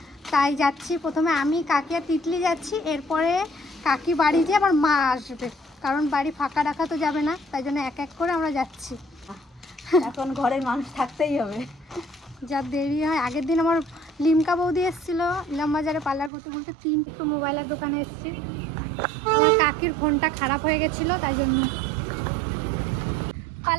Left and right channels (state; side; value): drops out; left; at 16.3 s